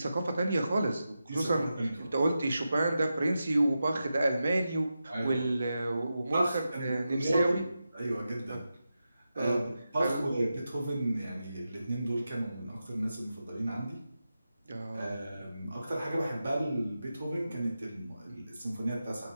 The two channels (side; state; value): both; inverted; correlation -0.90